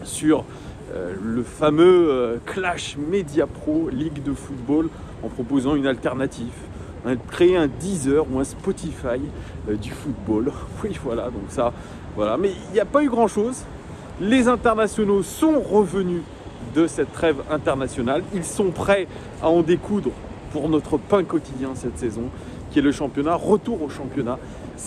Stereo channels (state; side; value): identical; both; correlation 1.00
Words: sur le fameux Clash Media Pro Ligue de football en proposant une alternative, créer un Deezer ou un Spotify du football. Oui, voilà, donc ça, voilà. Mais il n'y a pas eu grand-chose. Les internationaux sont revenus de cette trêve internationale. Ils sont prêts à en découdre pour notre pain quotidien cette saison, qui est le championnat. Retour au championnat,